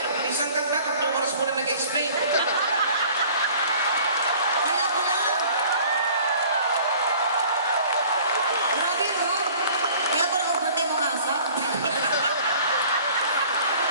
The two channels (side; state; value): both; inverted; correlation -0.50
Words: Isang kanta, 3 oras mo na nag-explain. Kaya ko lang. Grabe, no? Kaya ko lang overtime mo asa.